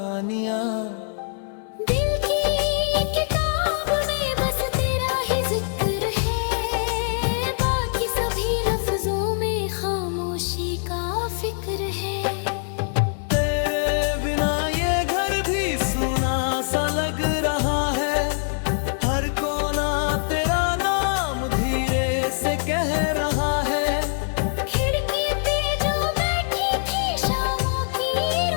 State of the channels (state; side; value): silent; right; digital silence